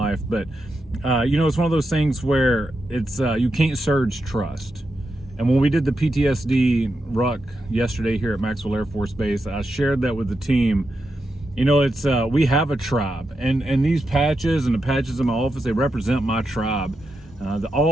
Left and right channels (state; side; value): normal; both; correlation 0.86